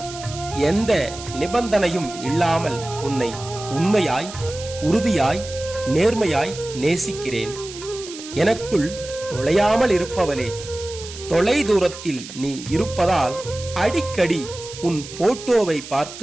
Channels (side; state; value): right; noise; hiss, 13 dB below the sound